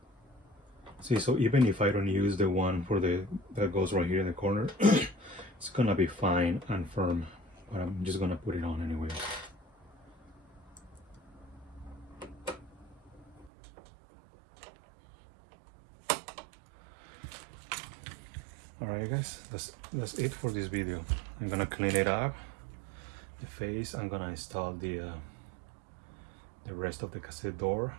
See, so even if I don't use the one for that goes right here in the corner, it's gonna be fine and firm, but I'm just gonna put it on anyway. Alright guys, that's it for this video. I'm gonna clean it up, the face. I'm gonna install the rest of the cassette door.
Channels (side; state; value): left; drops out; at 13.5 s